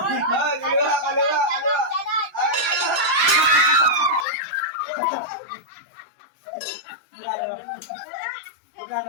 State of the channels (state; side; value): drops out; right; at 4.2 s